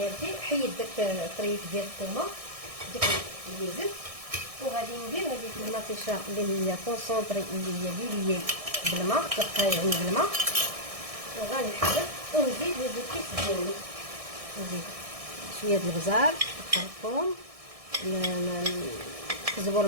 حيد داك الطريف ديال الثومه ديك اللي زدت، وغادي ندير هذيك المطيشه اللي هي كونسونطري اللي هي ليلي بالماء يعني بالماء، وغنحرك ونزيد الكيس ديالي، نزيد شويه د البزار الخرطوم الزبور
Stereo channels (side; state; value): left; late; 1.6 ms